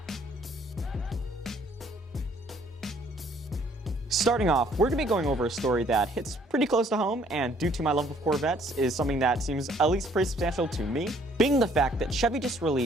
Starting off, we're going to be going over a story that hits pretty close to home, and due to my love of Corvettes, is something that seems at least pretty substantial to me, being the fact that Chevy just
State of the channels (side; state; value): both; normal; correlation 0.62